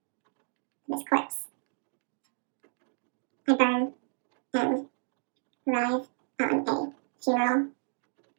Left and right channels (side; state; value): left; silent; digital silence